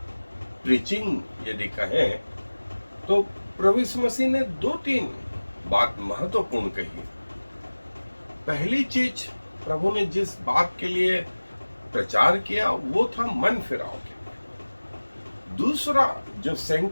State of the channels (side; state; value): both; inverted; correlation -1.00